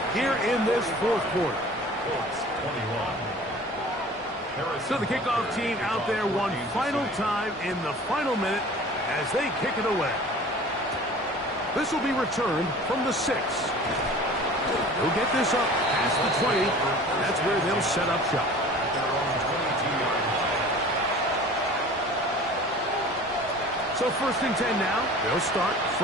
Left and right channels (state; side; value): normal; both; correlation 0.44